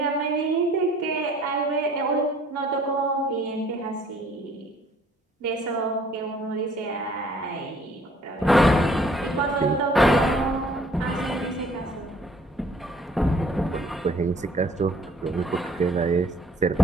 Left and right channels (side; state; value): both; normal; correlation 0.57